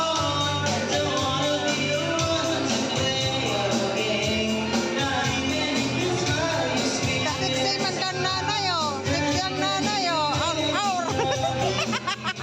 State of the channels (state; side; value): identical; both; correlation 1.00